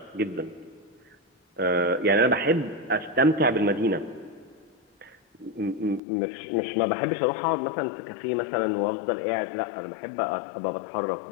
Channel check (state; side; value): drops out; right; at 6.0 s